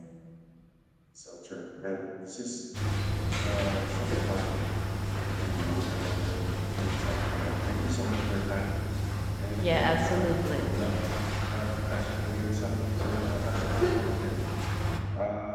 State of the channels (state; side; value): identical; both; correlation 1.00